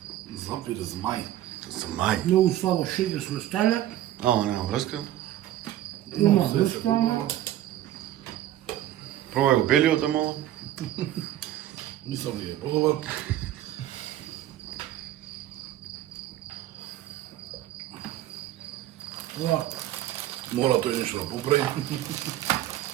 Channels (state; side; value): quieter; left; 13.1 dB